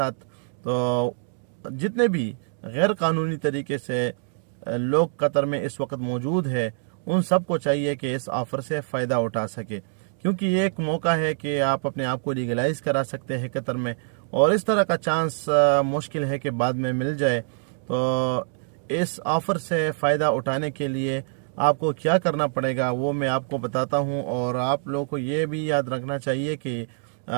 तो जितने भी गैर कानूनी तरीके से लोग कतर में इस वक्त मौजूद है उन सब को चाहिए कि इस ऑफ़र से फ़ायदा उठा सके, क्योंकि ये एक मौका है कि आप अपने आप को लीगलाइज करा सकते हैं कतर में, और इस तरह का चांस मुश्किल है कि बाद में मिल जाए। तो इस ऑफ़र से फ़ायदा उठाने के लिए आपको क्या करना पड़ेगा वो मैं आपको बताता हूँ। और आप लोगों को ये भी याद रखना चाहिए कि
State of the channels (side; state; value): left; silent; digital silence